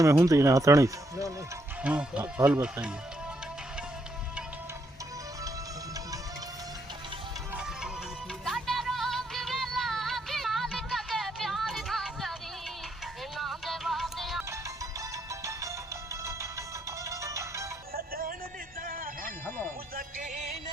होंगे ना हथानी हाँ हाल बताइए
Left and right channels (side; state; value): both; normal; correlation 0.75